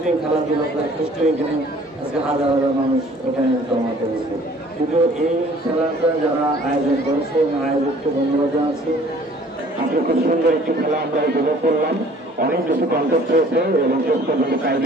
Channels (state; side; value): normal; both; correlation 0.53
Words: এই খেলাধুলা কষ্ট এখানে আজকে হাজার হাজার মানুষ এখানে জমা করেছে। কিন্তু এই খেলাটা যারা আয়োজন করেছে এবং আয়োজককে ধন্যবাদ জানাচ্ছি। আজকে খুব সুন্দর একটি খেলা আমরা উপভোগ করলাম, অনেক বেশি কন্টেস্ট হয়েছে এবং শেষ পর্যন্ত টাই